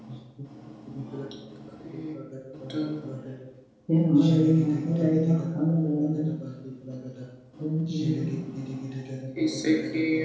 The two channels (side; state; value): both; identical; correlation 1.00